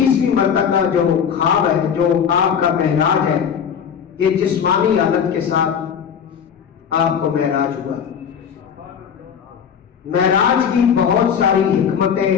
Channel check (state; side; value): quieter; right; 7.6 dB